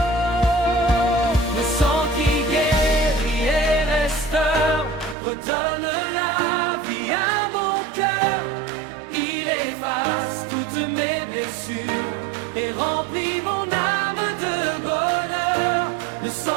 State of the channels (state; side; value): drops out; left; at 5.2 s